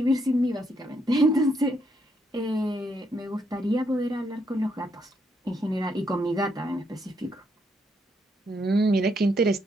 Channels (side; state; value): both; normal; correlation 0.75